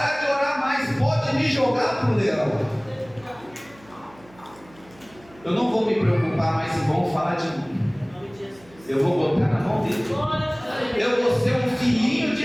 de orar mais, pode me jogar para o leão. Eu não vou me preocupar mais se vão falar de mim. Eu vou botar na mão dele. Eu vou ser um filhinho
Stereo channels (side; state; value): right; noise; hum, 26 dB below the sound